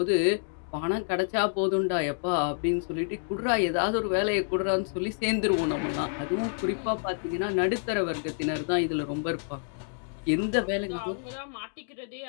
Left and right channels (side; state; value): right; silent; digital silence